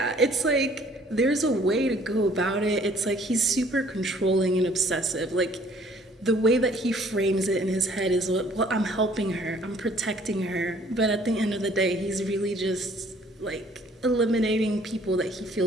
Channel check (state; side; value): normal; both; correlation 0.58